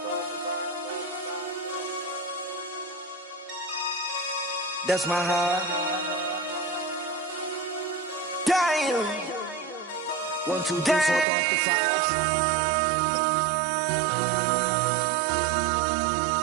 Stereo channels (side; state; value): left; drops out; at 11.2 s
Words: That's my high. Damn. 1, 2, 3, 4, throw up to 5.